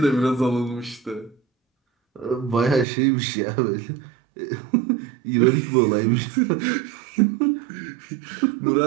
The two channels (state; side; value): drops out; left; at 2.9 s